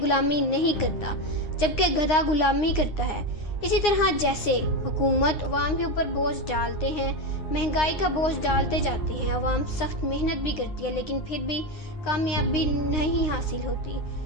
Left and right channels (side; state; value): right; late; 9.7 ms